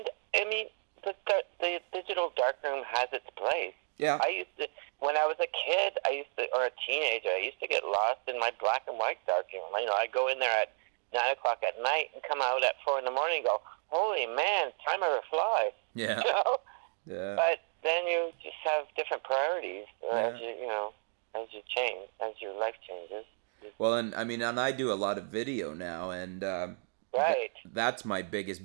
the digital darkroom has its place. Yeah. When I was a kid, or a teenager, I used to get lost in my black and white darkroom. I'd go in there at 9 o'clock at night and come out at 4 in the morning and go, "Holy man, time ever flies." Yeah. Yeah. But then you just have different priorities as you change, as your life changes. Well, and I do a lot of video now, and right. That's my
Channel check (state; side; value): silent; left; 56 dB below the other